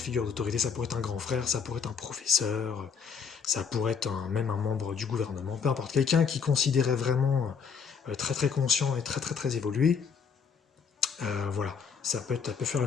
d'autorité, ça pourrait être un grand frère, ça pourrait être un professeur, ça pourrait être même un membre du gouvernement, peu importe. Quelqu'un qui considérait vraiment très très conscient et très très très évolué, voilà, ça peut faire le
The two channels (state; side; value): quieter; right; 6.3 dB